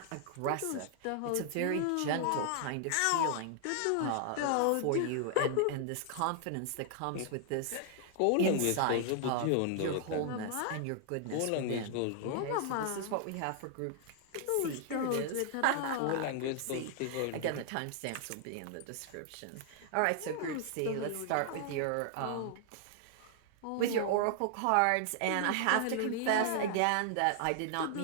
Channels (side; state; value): both; different; correlation 0.00